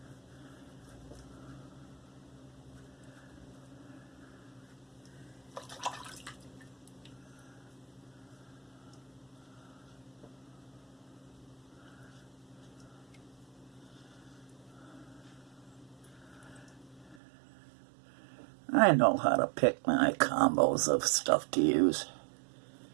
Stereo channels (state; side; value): drops out; left; at 17.2 s